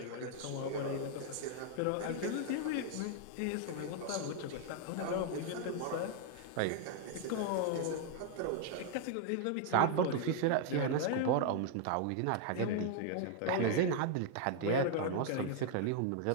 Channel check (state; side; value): different; both; correlation 0.00